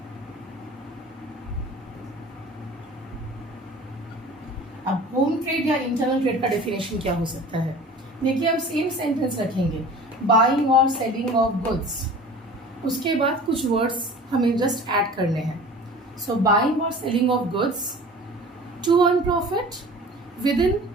अब होम ट्रेड या इंटरनल ट्रेड का डेफिनेशन क्या हो सकता है? देखिए, हम सेम सेंटेंस रखेंगे, बाइंग और सेलिंग ऑफ गुड्स, उसके बाद कुछ वर्ड्स हमें जस्ट ऐड करने हैं। सो बाइंग और selling of goods to earn profit within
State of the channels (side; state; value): both; normal; correlation 0.42